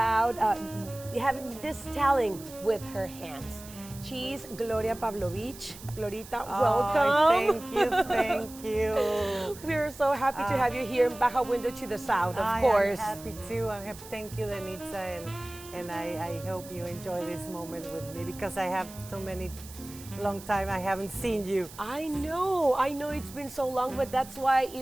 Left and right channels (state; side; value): noise; right; hiss, 17 dB below the sound